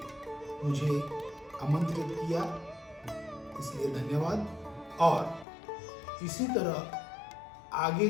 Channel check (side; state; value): right; drops out; at 5.5 s